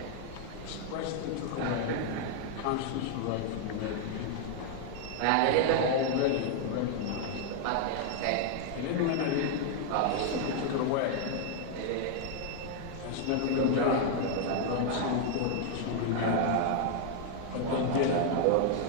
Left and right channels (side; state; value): both; different; correlation 0.00